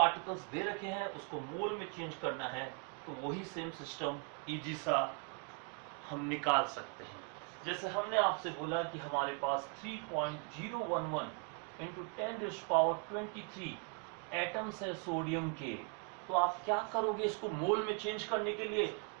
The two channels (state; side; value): quieter; left; 36.5 dB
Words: दे रखे हैं उसको मोल में चेंज करना है तो वही सेम सिस्टम इजी सा हम निकाल सकते हैं। जैसे हमने आपसे बोला कि हमारे पास 3.011 इंटू 10⁻23 एटम्स है सोडियम के, तो आप क्या करोगे, इसको मोल में चेंज करने के लिए